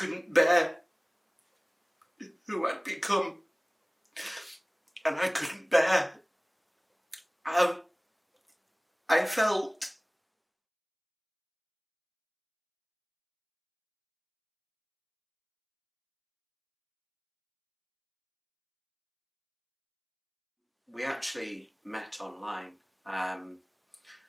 bear who I'd become, and I couldn't bear how I felt. We actually met online, and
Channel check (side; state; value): both; identical; correlation 1.00